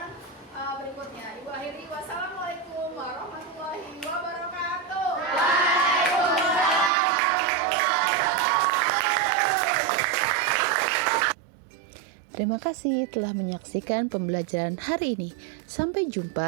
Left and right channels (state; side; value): drops out; left; at 6.9 s